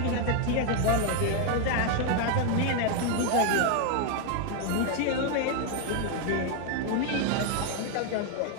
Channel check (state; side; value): different; both; correlation 0.01